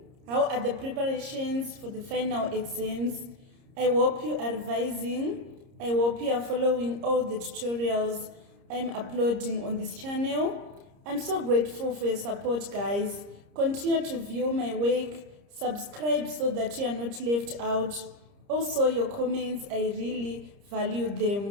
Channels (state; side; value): late; left; 30 ms